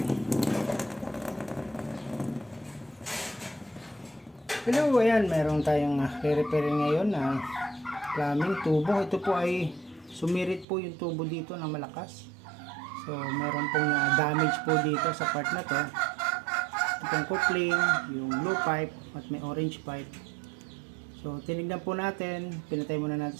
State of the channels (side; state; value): left; drops out; at 10.7 s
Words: Hello, ayan, meron tayong re-repair ngayon na plumbing tubo. Ito po ay sumirit po yung tubo dito na malakas. So meron pong damage po dito sa part na to. Itong coupling, yung blue pipe at may orange pipe. So tinignan po natin, pinatay muna